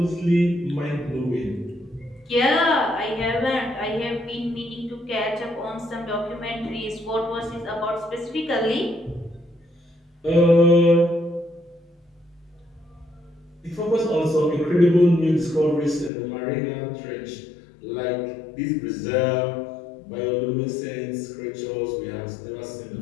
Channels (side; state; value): right; drops out; at 16.1 s